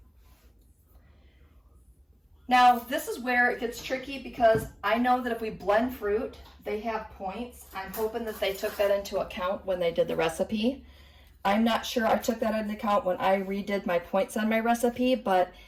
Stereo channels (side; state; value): both; identical; correlation 1.00